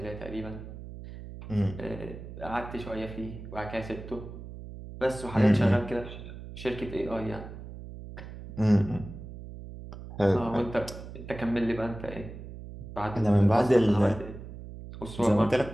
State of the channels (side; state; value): right; noise; hum, 12 dB below the sound